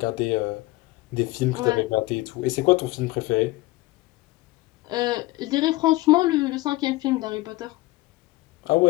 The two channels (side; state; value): right; quieter; 19.7 dB